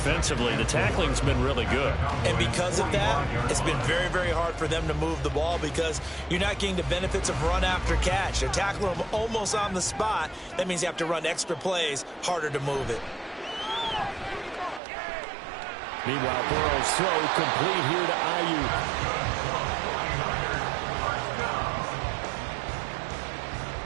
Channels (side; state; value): left; drops out; at 14.8 s